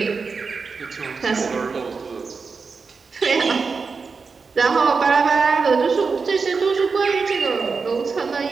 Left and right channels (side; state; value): left; quieter; 4.9 dB